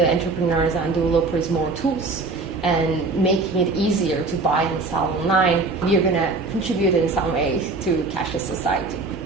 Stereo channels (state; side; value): quieter; left; 3.7 dB